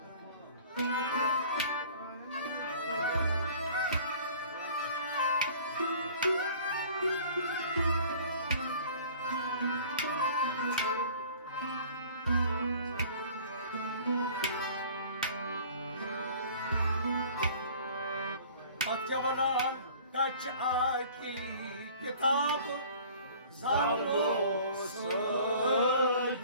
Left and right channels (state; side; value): inverted; both; correlation -0.48